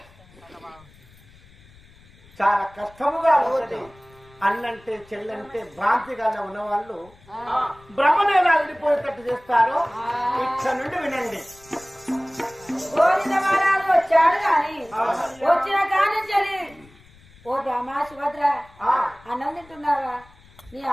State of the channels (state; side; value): noise; left; rumble, 26 dB below the sound